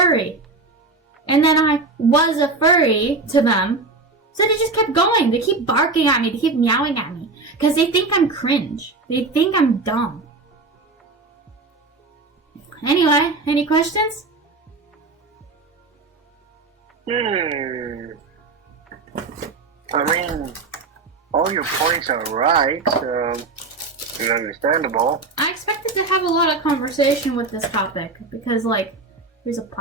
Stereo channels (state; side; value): quieter; left; 3.6 dB